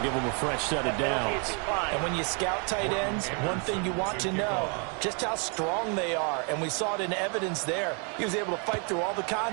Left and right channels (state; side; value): quieter; left; 37.5 dB